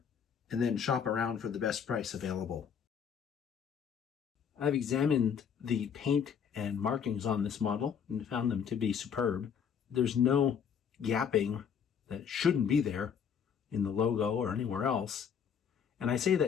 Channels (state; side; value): quieter; right; 7.4 dB